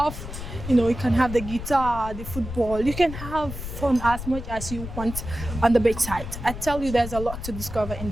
You know, you can have the guitar, the football. You can have fun as much as you want on the beachside. I tell you, there's a lot to discover in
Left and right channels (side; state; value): left; noise; rumble, 9 dB below the sound